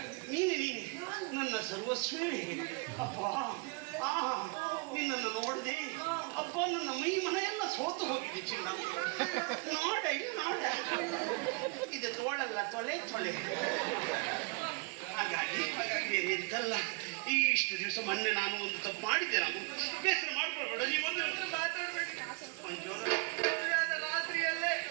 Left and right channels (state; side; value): quieter; left; 30.3 dB